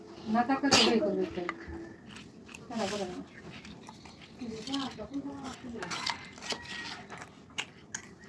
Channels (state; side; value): identical; both; correlation 1.00